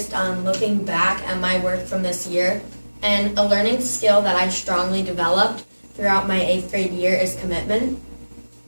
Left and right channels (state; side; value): inverted; both; correlation -1.00